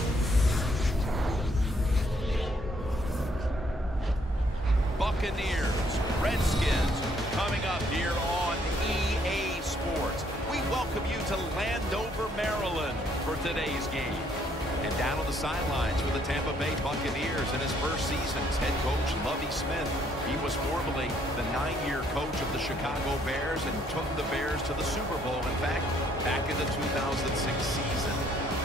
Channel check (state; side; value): normal; both; correlation 0.67